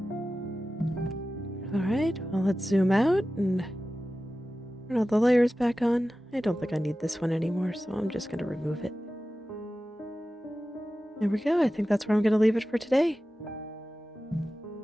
Alright, well let's zoom out and turn all the layers back on. I don't think I need this one anymore, so I'm just going to remove it. There we go. I think that's where I'm going to leave it for today.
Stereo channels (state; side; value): normal; both; correlation 0.94